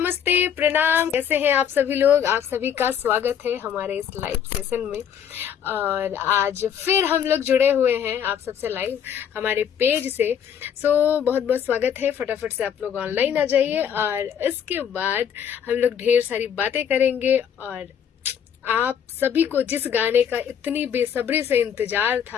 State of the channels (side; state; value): right; quieter; 8.5 dB